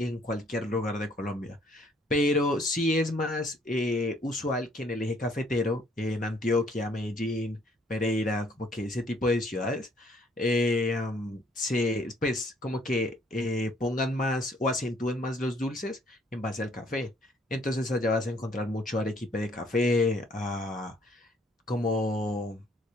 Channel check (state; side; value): normal; both; correlation 0.63